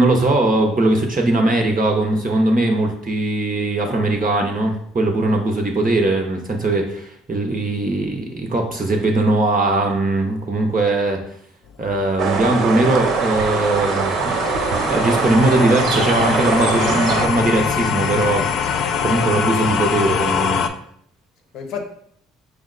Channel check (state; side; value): normal; both; correlation 0.63